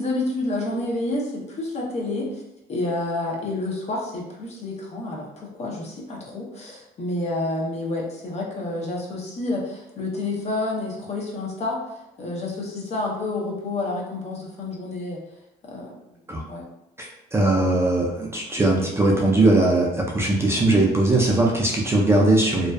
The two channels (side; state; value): both; normal; correlation 0.61